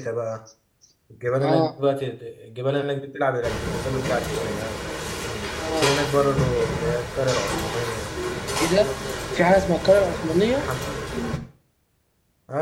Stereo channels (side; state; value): both; identical; correlation 1.00